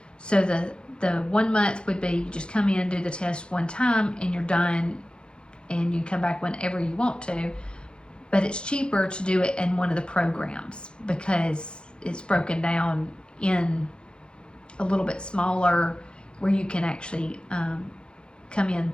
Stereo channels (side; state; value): right; late; 0.052 ms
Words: So the 1 month would be you just come in, do the test one time, and you're done, and you come back whenever you want to. But it's cheaper to do it in one of the programs because it's broken down in a little bit smaller, where you can actually come in